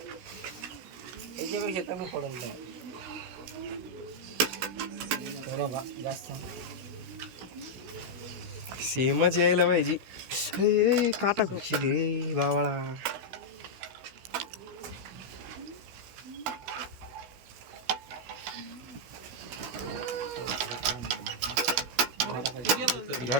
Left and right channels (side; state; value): left; late; 16 ms